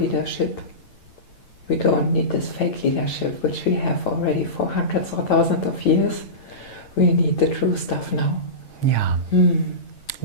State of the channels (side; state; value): right; late; 8.8 ms